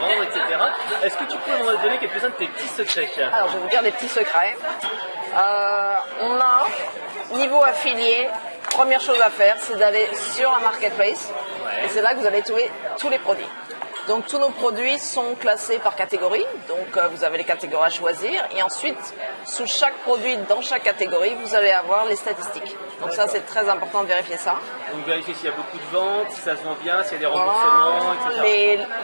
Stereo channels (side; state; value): both; inverted; correlation -1.00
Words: etc. Est-ce que tu peux nous donner quelques-uns de tes petits secrets? Alors je vais vous dire des petits secrets. On a, niveau affilié, première chose à faire, c'est d'aller sur la marketplace. Et c'est là que vous allez trouver tous les produits. Donc tous nos produits sont classés par catégorie, donc vous avez les catégories à choisir, et ensuite sous chaque produit, dans chaque catégorie, vous allez avoir les statistiques. Donc ça c'est très important de vérifier ça. Donc vérifier s'il y a beaucoup de ventes, si ça se vend bien, s'il y a des remboursements, etc.